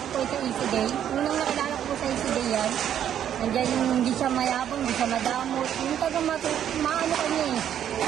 ko po sa Easy Day. Unang nakilala ko po sa Easy Day yan. Nandiyan yung hindi siya mayabang, hindi siya madamot. Yung tagang maano kanya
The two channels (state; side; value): quieter; left; 9.9 dB